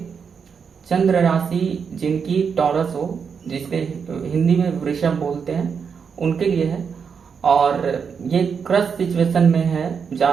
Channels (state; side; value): quieter; left; 6.3 dB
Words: चंद्र राशि जिनकी टॉरस हो, जिसके हिंदी में वृषभ बोलते हैं, उनके लिए है। और ये क्रश सिचुएशन में है,